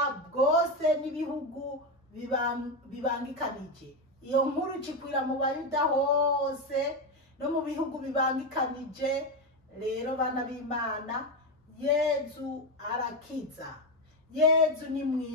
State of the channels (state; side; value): normal; both; correlation 0.11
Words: bwose n'ibihugu bibangikanije. Iyo nkuru ikwira mu Bayuda hose no mu bihugu bibangikanije. Rero bana b'Imana, Yezu arakiza, Yezu ni